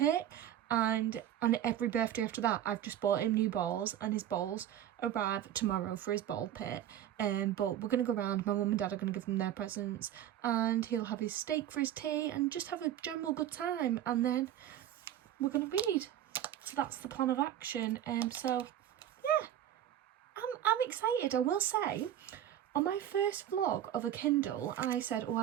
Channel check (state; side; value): quieter; left; 11.2 dB